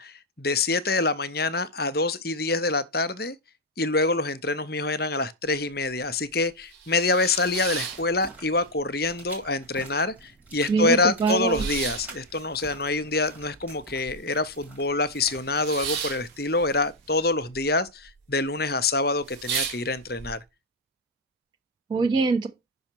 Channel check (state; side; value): normal; both; correlation 0.02